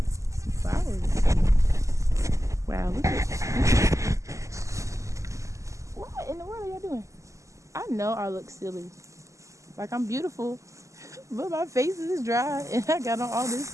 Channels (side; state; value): left; late; 0.15 ms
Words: some flowers. Wow, look at what in the world are y'all doing? I know I look silly. Like I'm beautiful, but my face is dry and I got on all